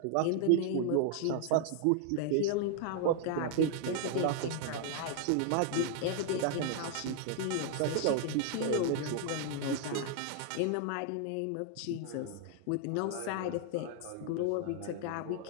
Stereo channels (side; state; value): both; different; correlation 0.00